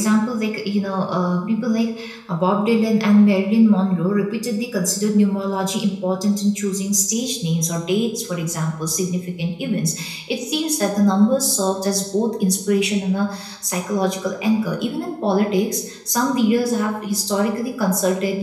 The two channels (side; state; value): both; identical; correlation 1.00